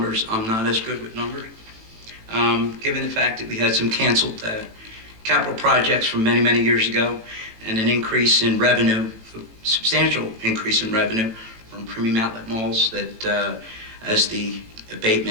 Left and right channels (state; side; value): late; left; 18 ms